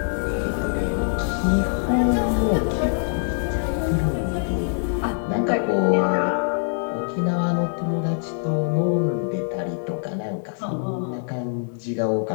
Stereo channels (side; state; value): right; silent; digital silence